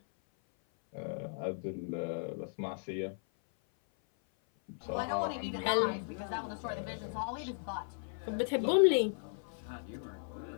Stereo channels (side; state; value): right; silent; 54 dB below the other